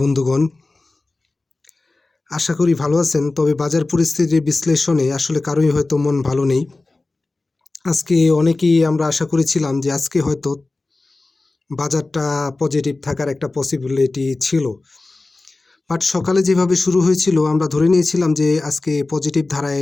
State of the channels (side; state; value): right; quieter; 3.3 dB